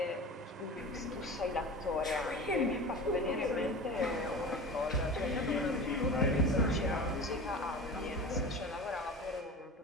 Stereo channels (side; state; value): both; normal; correlation 0.33